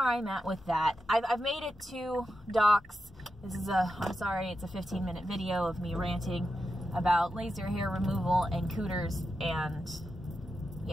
at with that. I've made it to Doc's. This is I'm sorry, it's a 15-minute video of me ranting about laser hair removal and cooters, and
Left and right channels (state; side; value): normal; both; correlation 0.89